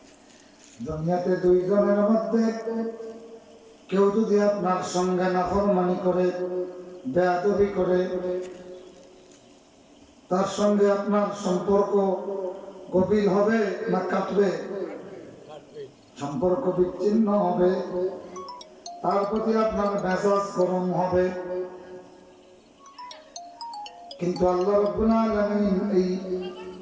দুনিয়াতে দুইজনের মধ্যে কেউ যদি আপনার সঙ্গে নাফরমানি করে, বেয়াদবি করে, তার সঙ্গে আপনার সম্পর্ক গভীর হবে না কাটবে? সম্পর্ক বিচ্ছিন্ন হবে, তার প্রতি আপনার মেজাজ গরম হবে। কিন্তু আল্লাহ রাব্বুল আলামিন এই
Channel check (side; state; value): both; identical; correlation 1.00